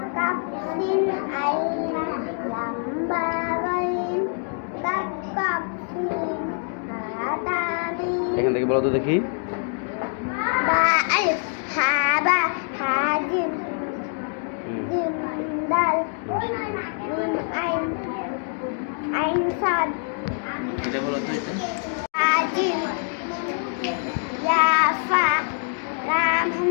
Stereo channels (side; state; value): right; silent; 56 dB below the other